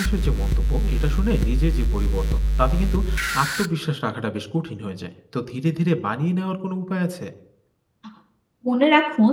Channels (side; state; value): both; identical; correlation 1.00